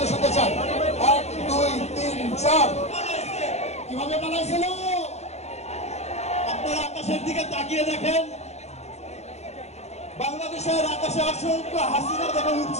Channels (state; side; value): late; right; 0.32 ms